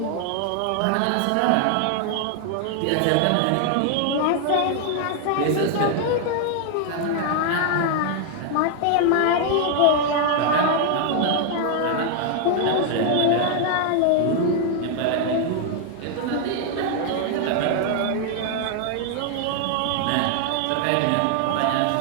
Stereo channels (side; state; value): both; different; correlation 0.00